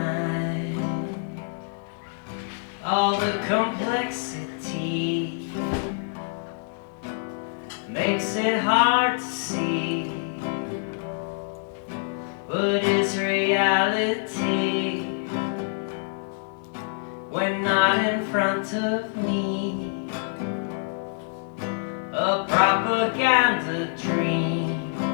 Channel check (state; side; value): silent; right; digital silence